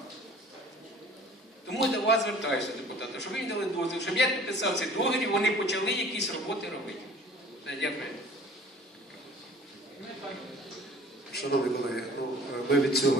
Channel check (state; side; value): normal; both; correlation 0.48